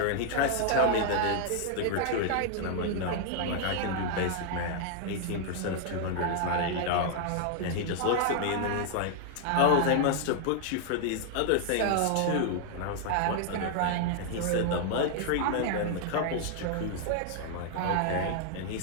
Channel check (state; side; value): different; both; correlation -0.01